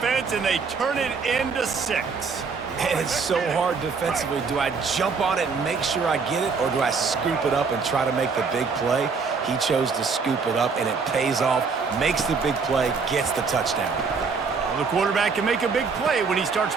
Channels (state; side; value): quieter; left; 5.0 dB